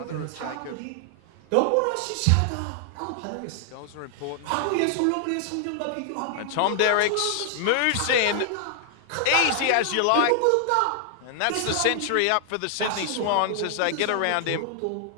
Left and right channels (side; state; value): both; different; correlation 0.00